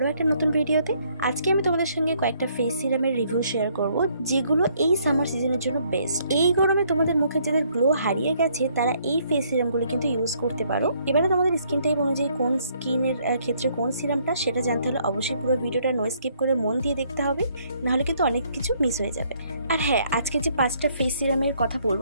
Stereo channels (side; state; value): both; inverted; correlation -0.67